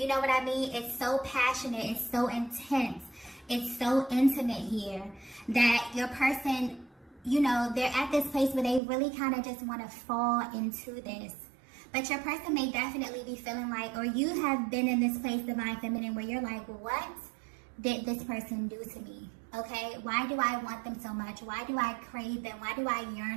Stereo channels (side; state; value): left; drops out; at 8.8 s